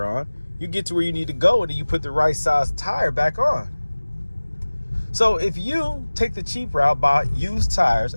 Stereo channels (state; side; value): inverted; both; correlation -1.00